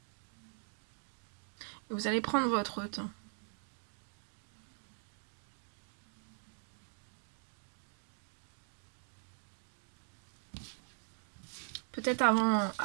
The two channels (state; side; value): silent; left; 50 dB below the other